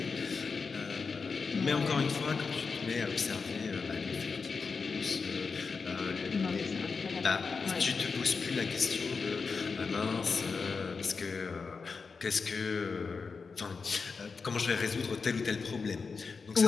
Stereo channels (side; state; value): right; quieter; 4.9 dB